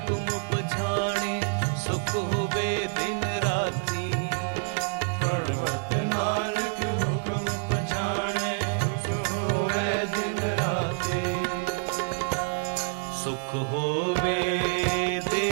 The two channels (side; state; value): left; silent; 57 dB below the other